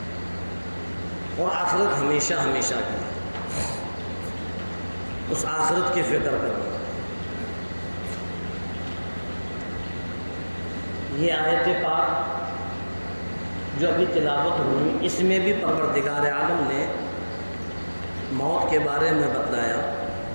اور آخرت ہمیشہ ہمیشہ کی ہے. اس آخرت کی فکر کرو. یہ آیت پاک جو ابھی تلاوت ہوئی، اس میں بھی پروردگار عالم نے موت کے بارے میں بتلایا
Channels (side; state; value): both; inverted; correlation -1.00